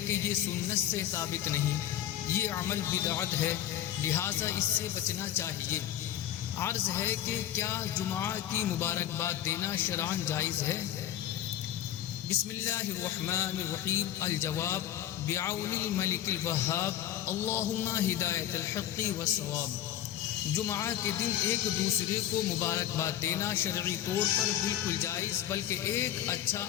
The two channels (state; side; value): quieter; right; 11.6 dB